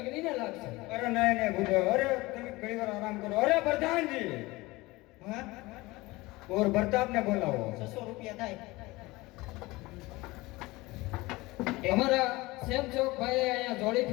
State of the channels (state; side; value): quieter; right; 21.2 dB